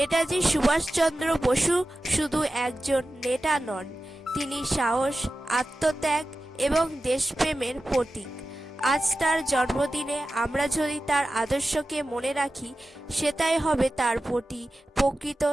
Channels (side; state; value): both; normal; correlation 0.94